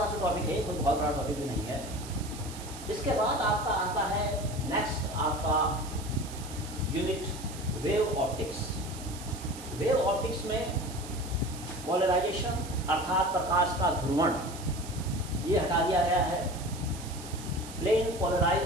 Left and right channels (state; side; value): noise; right; hiss, 14 dB below the sound